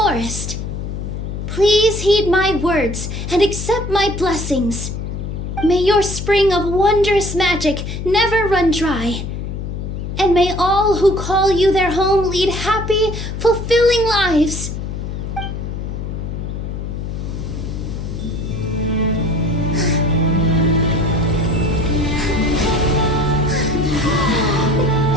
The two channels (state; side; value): noise; left; hum, 5 dB below the sound